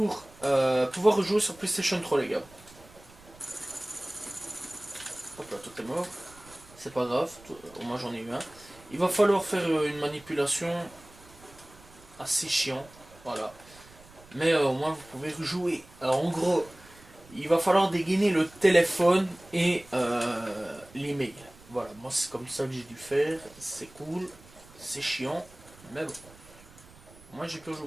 pouvoir rejouer sur PlayStation 3, les gars. Hop là, tout est mort. C'est pas grave, au moins j'en ai eu un. Il va falloir faire une manipulation assez chiant. Voilà. Mais au moins vous pouvez rejouer. Alors en gros, il va falloir dégainer le téléphone et l'email. Voilà, moi c'est comme ça que j'ai dû faire. C'est cool, c'est chiant, mais bon. Moi j'ai pu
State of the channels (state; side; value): noise; right; rumble, 23 dB below the sound